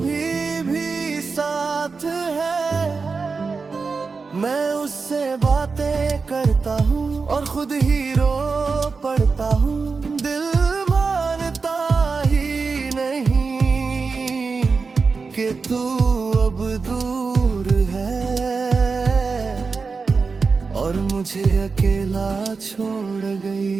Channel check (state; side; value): quieter; left; 4.6 dB